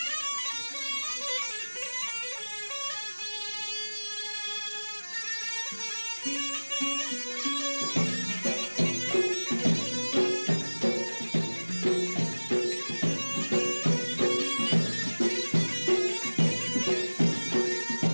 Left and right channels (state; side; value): inverted; both; correlation -1.00